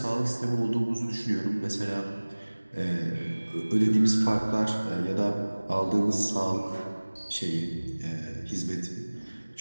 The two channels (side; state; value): both; inverted; correlation -1.00